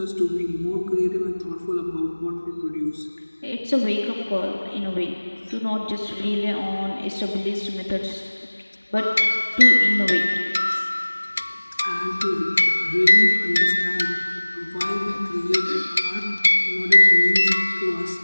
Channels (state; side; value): inverted; both; correlation -1.00